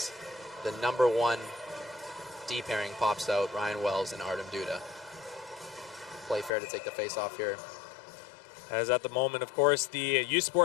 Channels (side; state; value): right; drops out; at 6.5 s